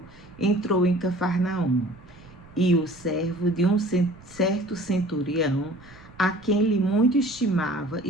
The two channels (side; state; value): right; noise; rumble, 23 dB below the sound